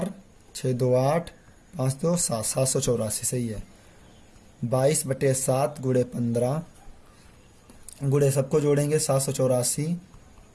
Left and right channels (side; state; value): both; identical; correlation 1.00